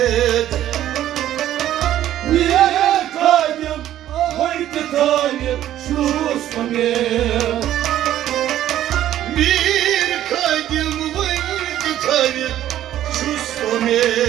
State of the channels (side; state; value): left; quieter; 12.3 dB